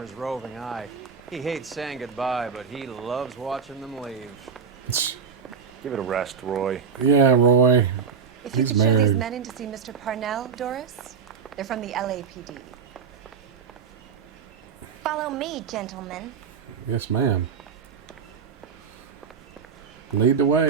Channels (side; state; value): left; quieter; 6.4 dB